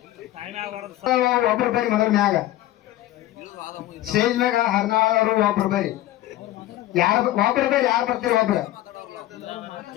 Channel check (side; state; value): right; quieter; 14.7 dB